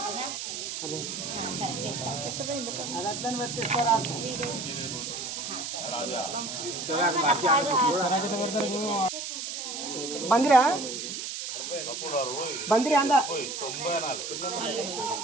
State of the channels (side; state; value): right; noise; hiss, 5 dB below the sound